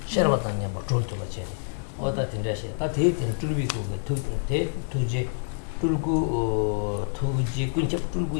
셔바탄냐 뭐 졸토바체 어다 tinda시 다 대tin 줄비고 대 투제 줄고 투지 군첩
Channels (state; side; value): silent; right; 60 dB below the other